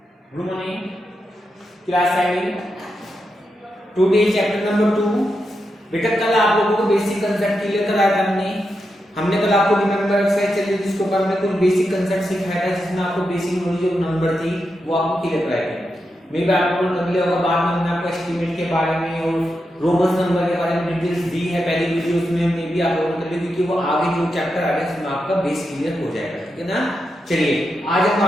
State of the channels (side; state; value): both; normal; correlation 0.86